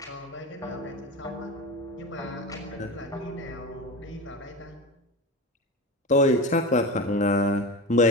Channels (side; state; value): both; normal; correlation 0.26